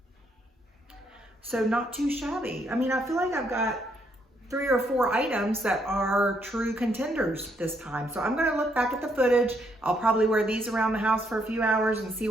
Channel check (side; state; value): both; normal; correlation 0.73